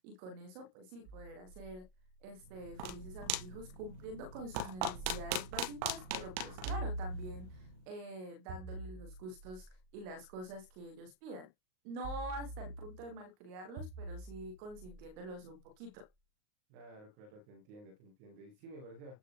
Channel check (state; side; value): late; left; 38 ms